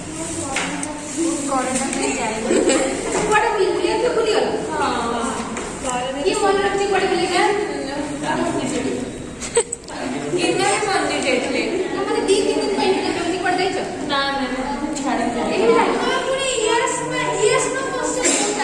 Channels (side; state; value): both; identical; correlation 1.00